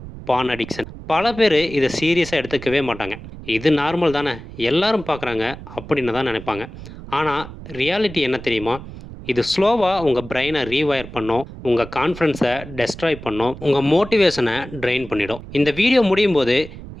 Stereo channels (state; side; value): noise; right; rumble, 14 dB below the sound